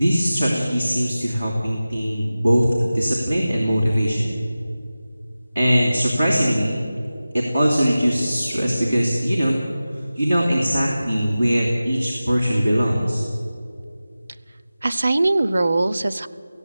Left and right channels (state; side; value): inverted; both; correlation -0.96